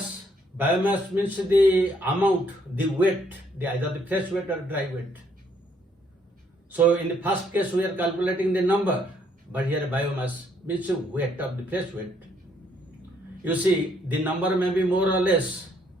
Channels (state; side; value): normal; both; correlation 0.69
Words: Biomass means the amount, the weight, either the fresh weight or dry weight. So in the first case we are calculating the number, but here biomass means the weight of the fresh weight. You see, the number may be more or less,